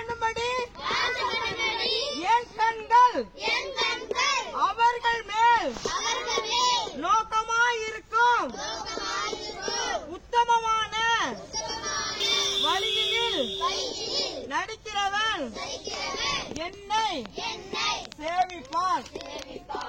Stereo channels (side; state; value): both; identical; correlation 1.00